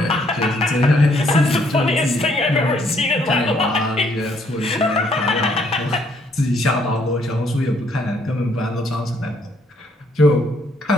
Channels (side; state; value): both; normal; correlation 0.68